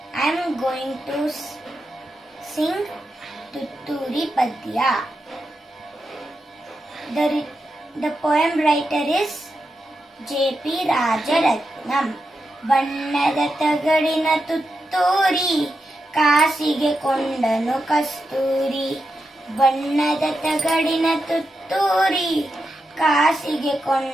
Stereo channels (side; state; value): both; normal; correlation 0.87